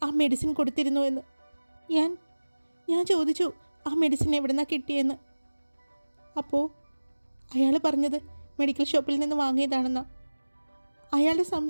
ആ മെഡിസിൻ കൊടുത്തിരുന്നു എന്ന്. ഞാൻ ചോദിച്ചു ആ മെഡിസിൻ എവിടെ നിന്നാണ് കിട്ടിയെന്ന്. അപ്പോൾ അയാൾ പറഞ്ഞത് മെഡിക്കൽ ഷോപ്പിൽ നിന്ന് വാങ്ങിയതാണെന്നാണ്. അയാളുടെ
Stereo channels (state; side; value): inverted; both; correlation -1.00